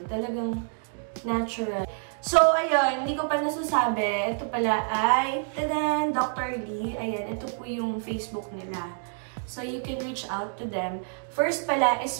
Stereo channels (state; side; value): silent; left; 60 dB below the other